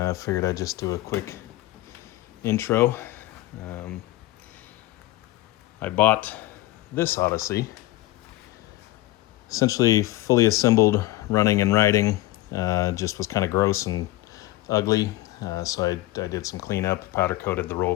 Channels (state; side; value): quieter; right; 17.2 dB